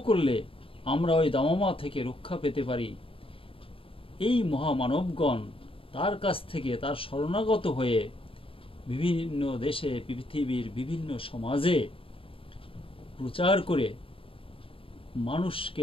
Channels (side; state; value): right; late; 0.26 ms